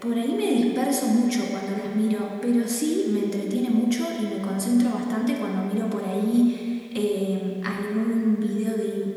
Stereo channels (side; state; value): both; identical; correlation 1.00